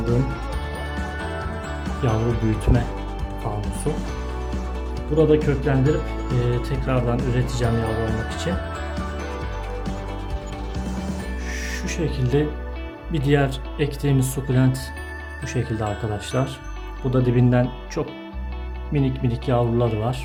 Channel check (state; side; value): identical; both; correlation 1.00